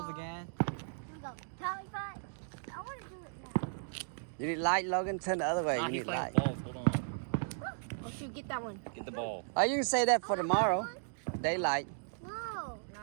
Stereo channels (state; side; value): silent; left; digital silence